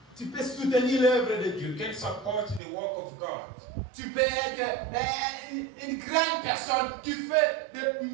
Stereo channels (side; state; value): left; drops out; at 2.6 s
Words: Tu peux soutenir l'œuvre de Dieu. You can support the work of God. Tu peux être une grande personne qui fait